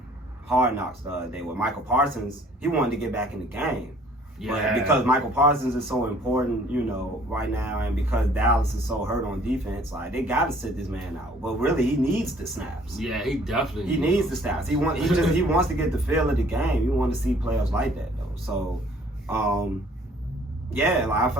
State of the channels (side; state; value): both; normal; correlation 0.57